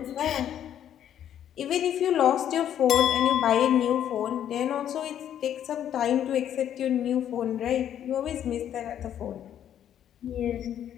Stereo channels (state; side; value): quieter; right; 10.2 dB